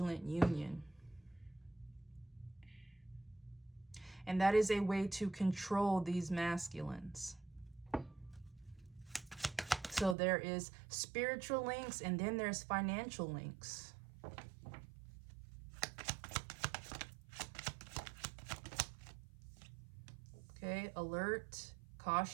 union. And that is a way to control these masculines. So there is spiritual links and then there's financial links. Okay, alert,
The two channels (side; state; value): left; drops out; at 10.2 s